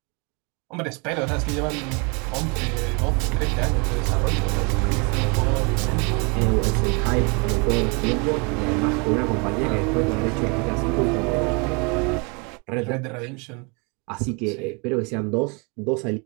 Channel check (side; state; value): left; quieter; 31.9 dB